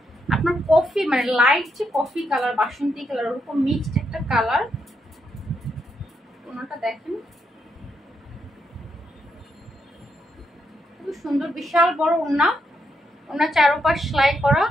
আপনার কফি, মানে লাইট যে কফি কালার, বাসন্তী কালার, ওরকম মিক্সড একটা কালার। ওনাটা দেখেন খুব সুন্দর, বিশাল বড় ওড়না। ওনার চারপাশ সেলাই করা।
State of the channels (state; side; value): normal; both; correlation 0.80